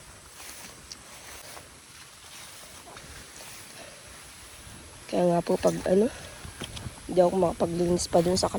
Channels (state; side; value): identical; both; correlation 1.00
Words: Kaya nga po pag hindi ako makapaglinis pa dun sa